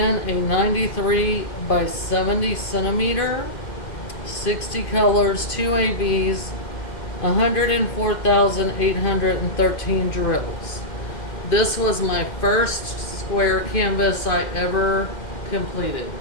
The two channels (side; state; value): right; late; 2.1 ms